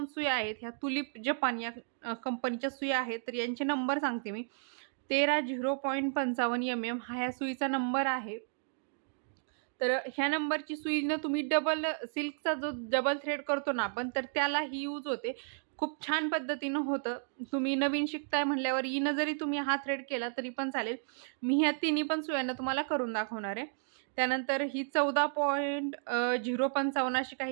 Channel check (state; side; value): silent; left; digital silence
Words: सुया आहेत ह्या तुलिप जपान या कंपनीच्या सुया आहेत। तर यांचे नंबर सांगते मी, 13.55 mm हा ह्या सुईचा नंबर आहे। तर ह्या नंबरची सुईनं तुम्ही डबल सिल्कचा जो डबल थ्रेड करतो ना आपण, तर त्याला ही यूज होते, खूप छान पद्धतीनं होतं। तुम्ही नवीन शिकताय म्हणल्यावर हिनं जरी तुम्ही हा थ्रेड केला तरी पण चालेल। मी ह्या तिन्ही पण सुयांना तुम्हाला करून दाखवणार आहे। त्यानंतर ही 14.055 अशी